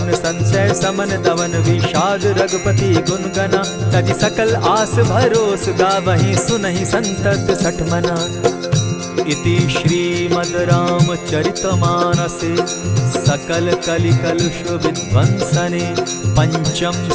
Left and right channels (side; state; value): both; identical; correlation 1.00